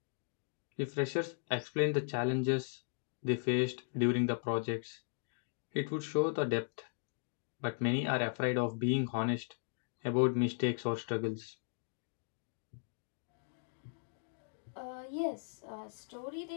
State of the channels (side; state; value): right; silent; digital silence